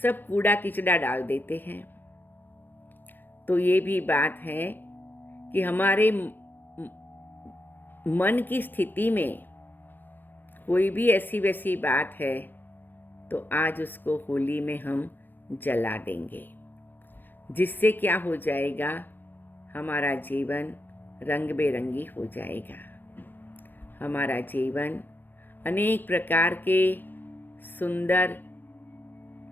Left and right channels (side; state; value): right; late; 0.091 ms